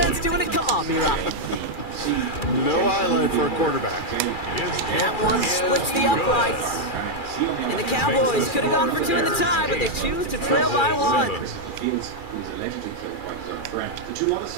doing it, come on, B-Rock. No highlight for a quarterback. That one splits the uprights. And the Cowboys could have gone for 2 in the tie, but they choose to trail by 1. Fields, who was allegedly killed by his own friend. The 2 other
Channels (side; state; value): right; late; 2.4 ms